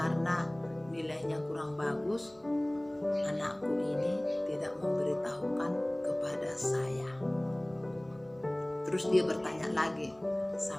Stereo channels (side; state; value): right; noise; hum, 29 dB below the sound